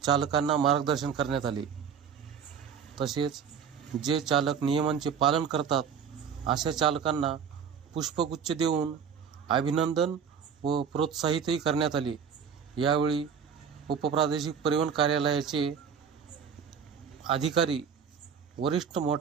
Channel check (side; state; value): left; quieter; 7.1 dB